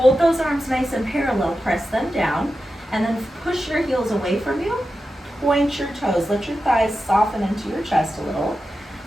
those arms nice and parallel, press them down, and then push your heels away from you. Point your toes, let your thighs soften into your chest a little.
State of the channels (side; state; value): both; normal; correlation 0.91